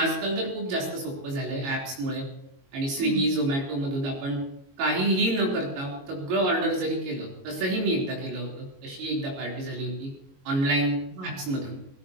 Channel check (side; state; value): left; late; 22 ms